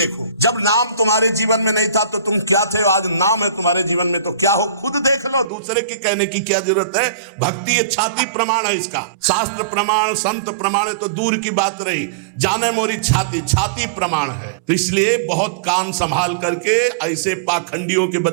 जब नाम तुम्हारे जीवन में नहीं था तो तुम क्या थे, आज नाम है तुम्हारे जीवन में तो क्या हो, खुद देख लो। दूसरे की कहने की क्या जरूरत है। भक्ति ये छाती प्रमाण है इसका। शास्त्र प्रमाण, संत प्रमाण है तो दूर की बात रही, जाने मोरी छाती प्रमाण है। तो इसलिए बहुत कान संभाल करके ऐसे पाखंडियों के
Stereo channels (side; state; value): left; drops out; at 5.5 s